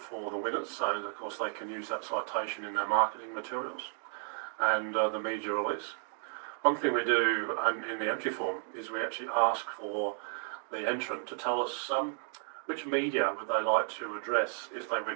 the winners, so of course they can use that citation in their marketing materials and the media release. One thing we do in the entry form is we actually ask for the entrant to tell us which media would they like to address if they win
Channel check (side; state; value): left; silent; 56 dB below the other